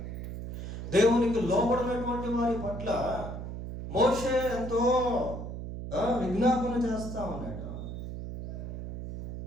దేవునికి లోబడినటువంటి వారి పట్ల మోషే ఎంతో విజ్ఞాపన చేస్తా ఉన్నాడు.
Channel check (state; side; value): noise; right; hum, 7 dB below the sound